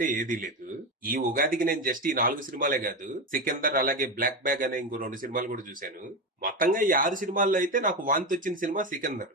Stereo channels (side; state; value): both; normal; correlation 0.16